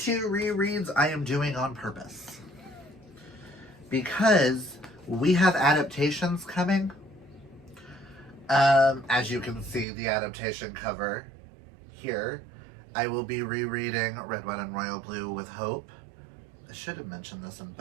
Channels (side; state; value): left; drops out; at 9.9 s